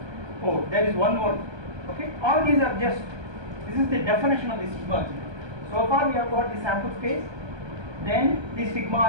Oh, there is one more. Okay, all these are just, this is the definition of the sigma algebra. So far we have got the sample space, then the sigma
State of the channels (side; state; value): left; late; 1.2 ms